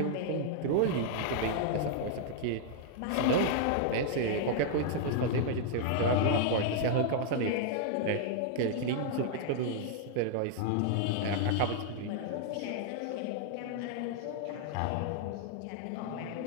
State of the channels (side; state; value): both; different; correlation -0.01